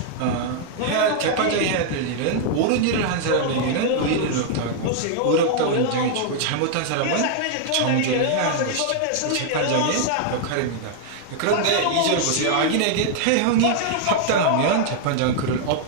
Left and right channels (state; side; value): different; both; correlation 0.00